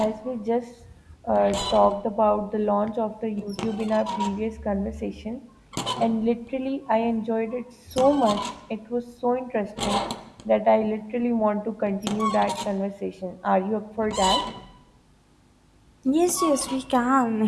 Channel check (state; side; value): identical; both; correlation 1.00